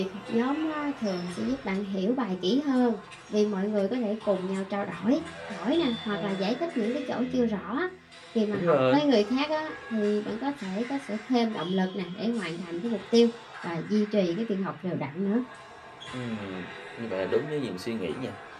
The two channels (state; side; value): identical; both; correlation 1.00